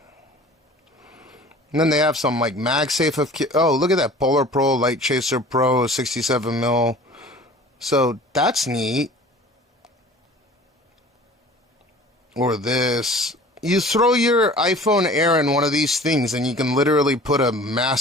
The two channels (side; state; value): both; normal; correlation 0.45